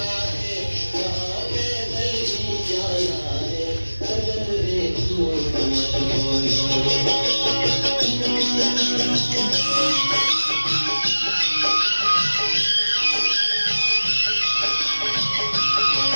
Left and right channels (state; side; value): inverted; both; correlation -1.00